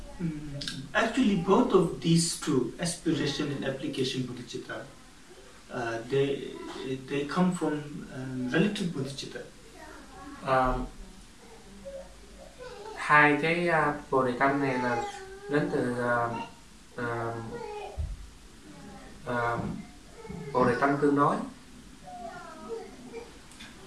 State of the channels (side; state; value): both; identical; correlation 1.00